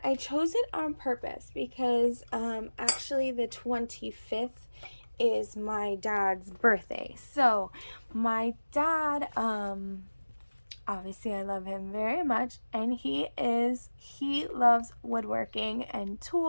I chose it on purpose because actually the 25th is my dad's birthday. So my dad, obviously I love him very much, and he loves woodworking and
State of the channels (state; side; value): inverted; both; correlation -1.00